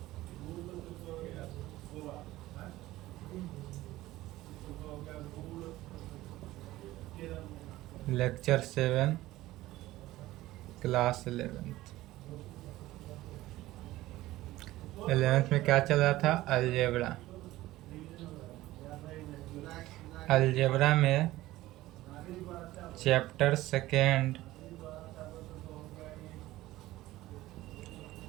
Lecture 7 class 11th। 11th में क्या चल रहा था? अलजेब्रा। अलजेब्रा में chapter 2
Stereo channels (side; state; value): left; quieter; 16.7 dB